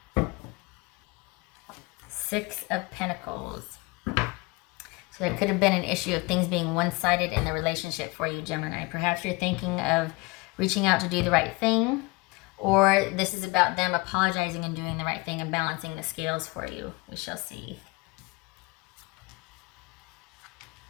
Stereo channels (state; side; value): quieter; right; 25.6 dB